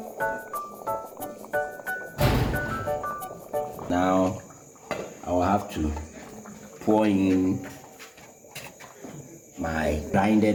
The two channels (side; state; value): both; identical; correlation 1.00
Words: Now I will have to pour in my